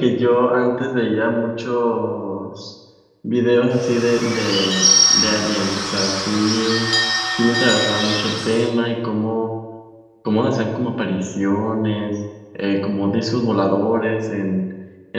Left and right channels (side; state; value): both; identical; correlation 1.00